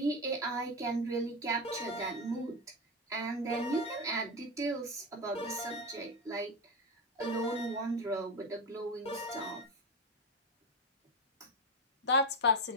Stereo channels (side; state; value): both; normal; correlation 0.16